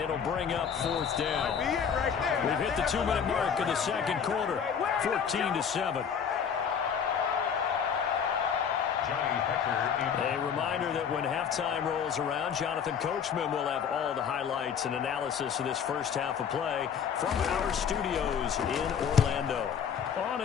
bring up 4th down. We've hit the 2-minute mark of the 2nd quarter, 14-7. A reminder that when halftime rolls around, Jonathan Coachman will have all the highlights and analysis of this first half of play from our studios in Orlando. On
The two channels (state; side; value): quieter; right; 7.3 dB